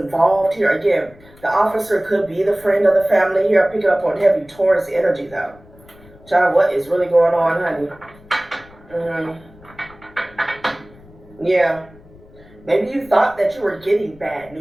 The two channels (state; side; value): noise; left; rumble, 24 dB below the sound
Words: here. Again, the officer could be the friend of the family here. Picking up on heavy Taurus energy, though. Child, what is really going on, honey? Yeah. Maybe you thought that you were getting bad